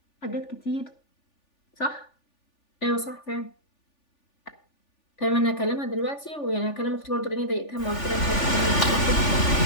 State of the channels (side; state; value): right; late; 3.4 ms